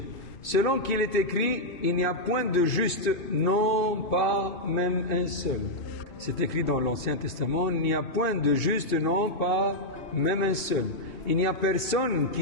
Selon qu'il est écrit, il n'y a point de juste, non pas même un seul. C'est écrit dans l'Ancien Testament, il n'y a point de juste, non pas même un seul. Il n'y a personne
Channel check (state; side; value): late; right; 2.7 ms